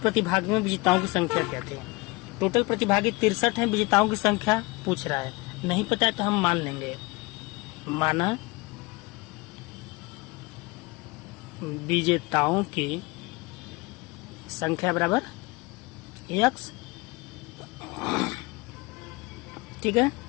में विजेताओं की संख्या क्या थी। टोटल प्रतिभागी 63 है, विजेताओं की संख्या पूछ रहा है, नहीं पता है तो हम मान लेंगे। माना विजेताओं की संख्या बराबर x। ठीक है,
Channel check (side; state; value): right; quieter; 24.5 dB